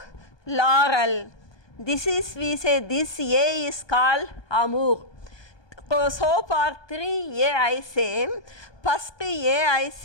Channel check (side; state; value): right; late; 1.2 ms